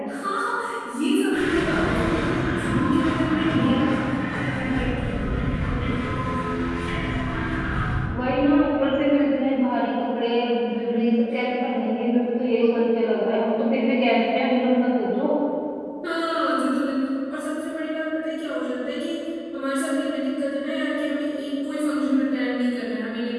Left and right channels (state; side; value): identical; both; correlation 1.00